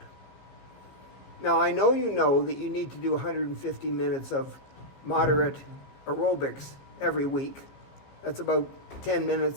Now, I know that you need to do 150 minutes of moderate aerobics every week. That's about 10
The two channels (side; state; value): right; late; 15 ms